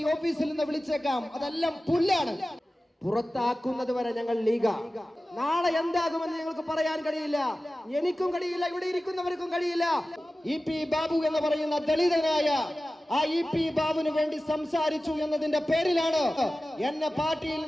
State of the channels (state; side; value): normal; both; correlation 0.95